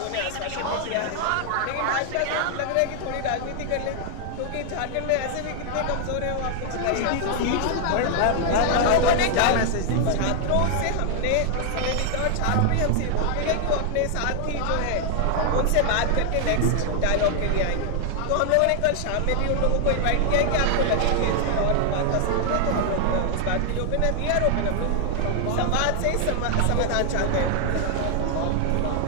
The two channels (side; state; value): both; different; correlation 0.00